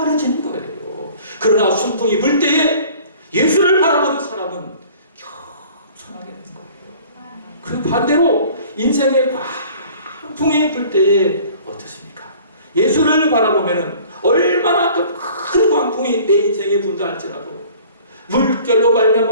거예요. 그러나 순풍이 불 때에 예수를 바라보는 사람은 겸손하게 되는 거예요. 그 반대로 인생의 광풍이 불 때에 어떻습니까? 예수를 바라보면 얼마나 큰 광풍이 내 인생에 분다 할지라도 물결로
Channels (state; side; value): inverted; both; correlation -0.49